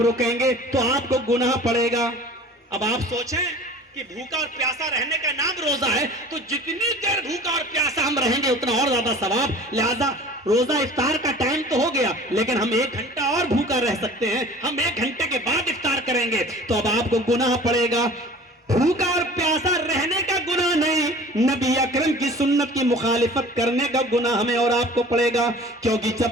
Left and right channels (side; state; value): both; normal; correlation 0.44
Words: گے تو آپ کو گناہ پڑے گا. اب آپ سوچیں کہ بھوکا اور پیاسا رہنے کا نام روزہ ہے تو جتنی دیر بھوکا اور پیاسا ہم رہیں گے اتنا اور زیادہ ثواب. لہذا روزہ افطار کا ٹائم تو ہو گیا لیکن ہم 1 گھنٹہ اور بھوکا رہ سکتے ہیں. ہم 1 گھنٹے کے بعد افطار کریں گے تو اب آپ کو گناہ پڑے گا. بھوکا اور پیاسا رہنے کا گناہ نہیں، نبی اکرم کی سنت کی مخالفت کرنے کا گناہ ہمیں اور آپ کو پڑے گا. کیونکہ